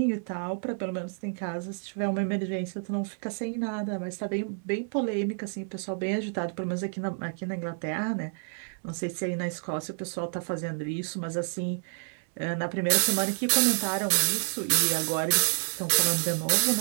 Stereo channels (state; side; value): silent; left; digital silence